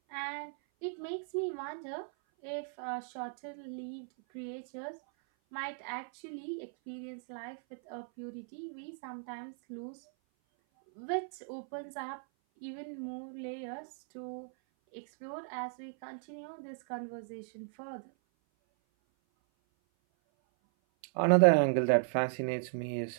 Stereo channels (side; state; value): left; silent; 54 dB below the other